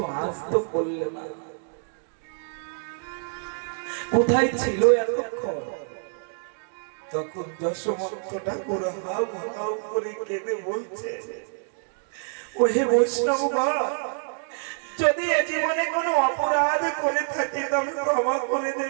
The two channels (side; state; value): left; silent; 61 dB below the other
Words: আজ তো করলে না। কোথায় ছিল এতক্ষণ? তখন যশোমন্ত ঠাকুর হাউ হাউ করে কেঁদে বলছে, ওহে বৈষ্ণবগণ, যদি এ জীবনে কোনো অপরাধ করে থাকি তবে ক্ষমা করে